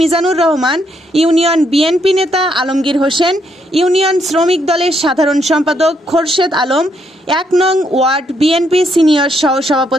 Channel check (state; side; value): normal; both; correlation 0.75